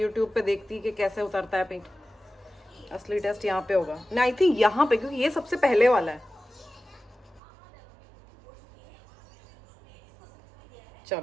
पे देखती कि कैसे उतरता है पेंट। असली टेस्ट यहाँ पे होगा ना, आई थिंक यहाँ पे, क्योंकि ये सबसे पहले वाला है।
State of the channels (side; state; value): left; drops out; at 7.4 s